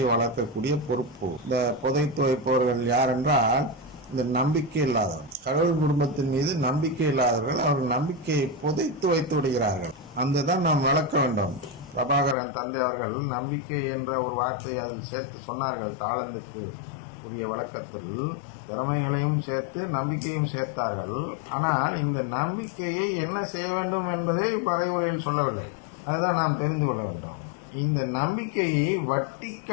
வளர்க்கக்கூடிய பொறுப்பு. இந்த புதைத்து வைப்பவர்கள் யார் என்றால் இந்த நம்பிக்கை இல்லாதவர், கடவுள் குடும்பத்தின் மீது நம்பிக்கை இல்லாதவர்கள். அவர்கள் நம்பிக்கையை புதைத்து வைத்து விடுகிறார்கள். அந்த தான் நாம் விளக்க வேண்டும். பிரபாகரன் தந்தை அவர்கள் நம்பிக்கை என்ற ஒரு வார்த்தையை அதில் சேர்த்து சொன்னார்கள். தாளந்துக்கு உரிய விளக்கத்தில் திறமைகளையும் சேர்த்து நம்பிக்கையும் சேர்த்தார்கள். ஆனால் இந்த நம்பிக்கையை என்ன செய்ய வேண்டும் என்பதை மறைவுரையில் சொல்லவில்லை. அதுதான் நாம் தெரிந்து கொள்ள வேண்டும். இந்த நம்பிக்கையை வட்டி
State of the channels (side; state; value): right; drops out; at 12.4 s